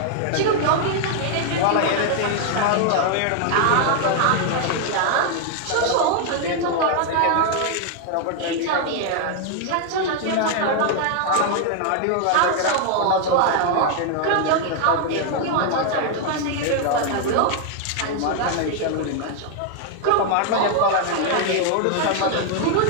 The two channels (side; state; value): both; different; correlation 0.00